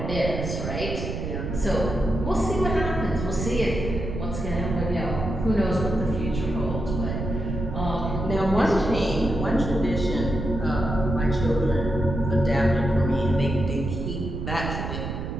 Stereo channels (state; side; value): noise; right; rumble, 4 dB below the sound